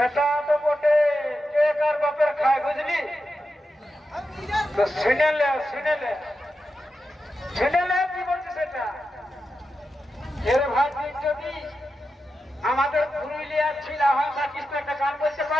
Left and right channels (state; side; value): normal; both; correlation 0.90